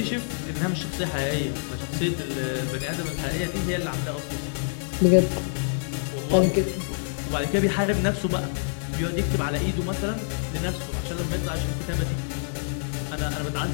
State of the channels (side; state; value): right; silent; digital silence